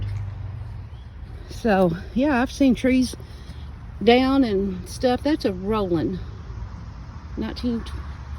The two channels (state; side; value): identical; both; correlation 1.00